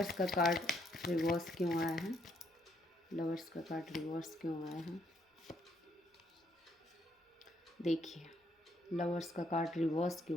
का कार्ड रिवर्स क्यों आया है? लवर्स का कार्ड रिवर्स क्यों आया है? देखिए, लवर्स का कार्ड रिवर्स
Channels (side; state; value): both; normal; correlation 0.72